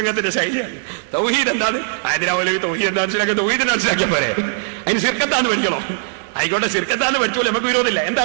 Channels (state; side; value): silent; left; digital silence